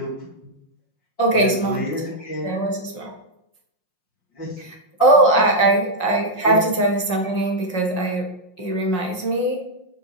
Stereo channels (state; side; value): late; right; 5.5 ms